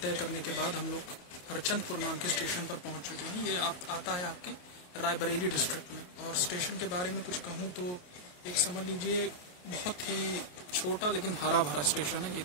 तय करने के बाद हम लोग हरचंदपुर नाम के स्टेशन पर पहुंच चुके हैं। ये आता है आपके रायबरेली डिस्ट्रिक्ट में। और स्टेशन के बारे में कुछ कहूं तो एक समझ लीजिए बहुत ही छोटा लेकिन हरा भरा स्टेशन है। ये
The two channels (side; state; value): right; late; 28 ms